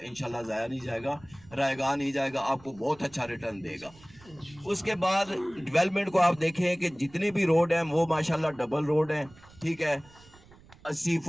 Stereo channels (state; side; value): noise; right; rumble, 24 dB below the sound